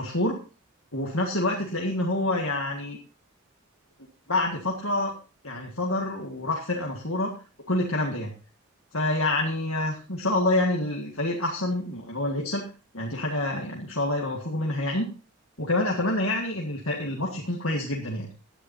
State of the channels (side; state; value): both; normal; correlation 0.10